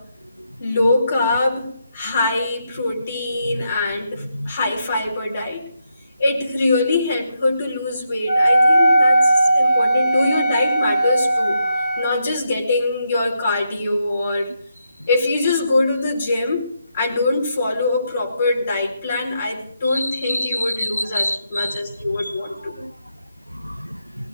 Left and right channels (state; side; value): inverted; both; correlation -0.82